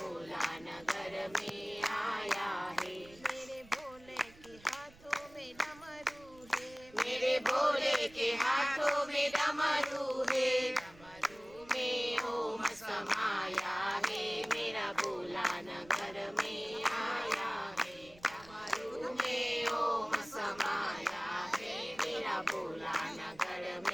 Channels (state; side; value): noise; right; rumble, 23 dB below the sound